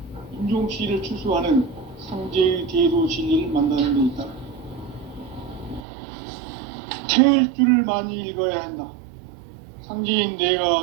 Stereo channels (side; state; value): left; drops out; at 5.9 s